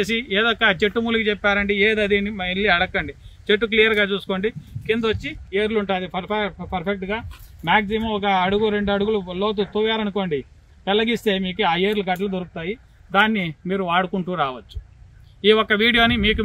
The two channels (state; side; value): identical; both; correlation 1.00